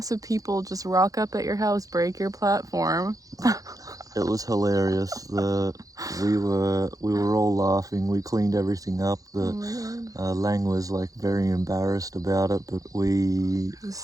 people just rock up at your house, break your platform. It was hilarious. We were all laughing. We cleaned everything up. Lang was like very embarrassed about it, but it was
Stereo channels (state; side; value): late; left; 0.17 ms